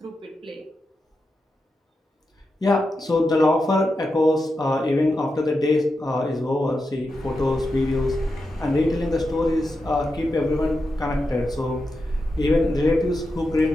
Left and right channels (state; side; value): normal; both; correlation 0.88